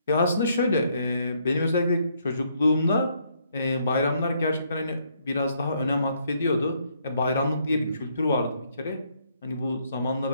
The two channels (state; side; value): inverted; both; correlation -0.71